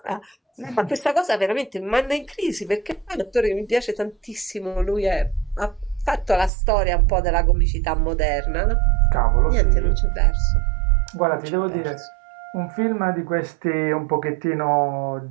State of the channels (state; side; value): drops out; left; at 6.5 s